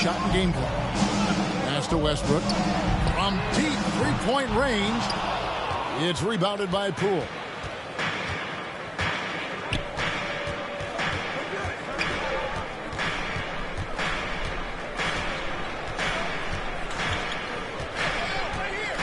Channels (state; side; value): identical; both; correlation 1.00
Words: and game clock. Pass to Westbrook. From deep three-point range. It's rebounded by Poole.